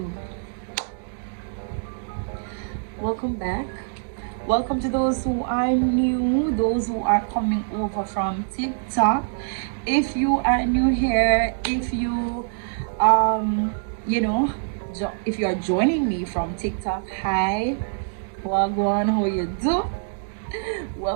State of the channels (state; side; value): silent; left; digital silence